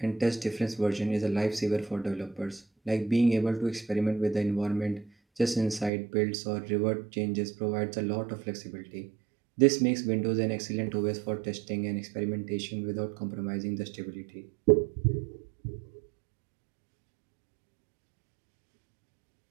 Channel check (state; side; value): drops out; left; at 5.9 s